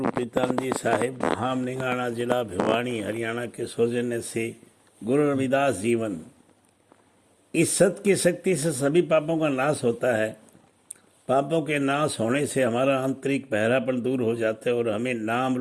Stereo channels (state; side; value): identical; both; correlation 1.00